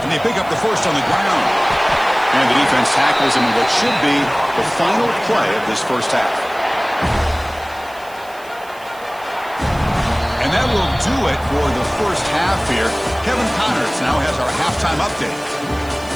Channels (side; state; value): right; noise; hiss, 23 dB below the sound